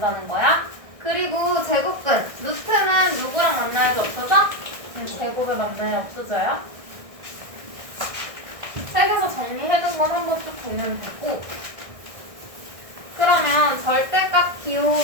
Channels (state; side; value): late; left; 1.6 ms